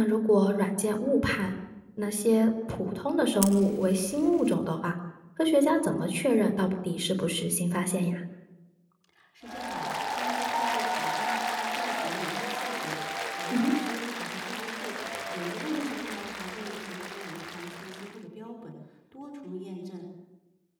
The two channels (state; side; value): identical; both; correlation 1.00